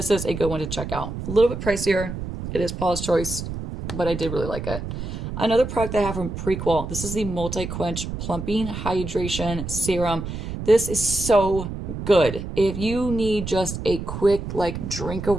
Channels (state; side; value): noise; right; rumble, 7 dB below the sound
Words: is a good one to check out. A little bit pricier. It is Paula's Choice, but I did really like it. Another product I have from Prequel. This is the Multi-Quench Plumping Hydration Serum. This is so good. If you need just a quick like drink